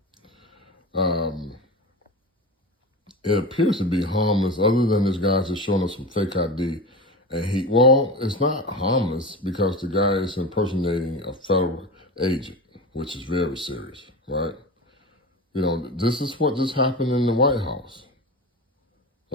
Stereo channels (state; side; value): normal; both; correlation 0.26